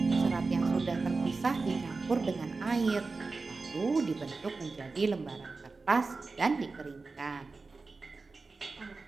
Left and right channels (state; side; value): quieter; left; 4.0 dB